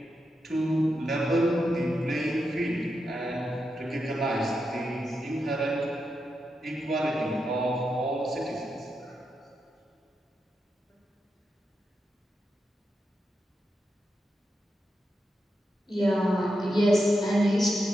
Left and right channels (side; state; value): both; normal; correlation 0.86